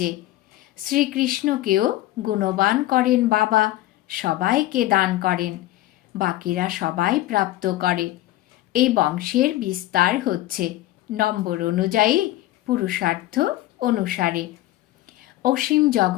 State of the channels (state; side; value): quieter; right; 15.9 dB